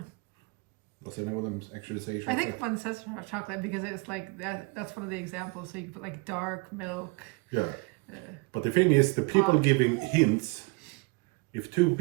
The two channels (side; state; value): left; quieter; 28.5 dB